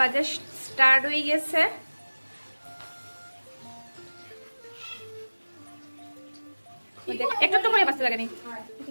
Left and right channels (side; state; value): both; inverted; correlation -1.00